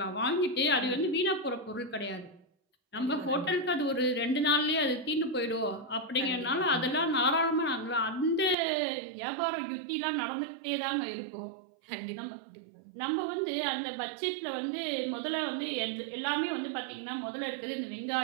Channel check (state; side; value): drops out; left; at 8.6 s